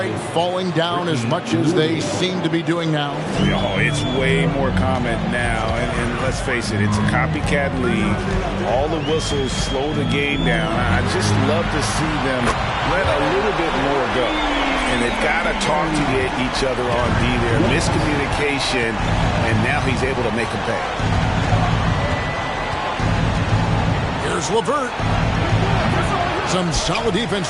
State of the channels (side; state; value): both; identical; correlation 1.00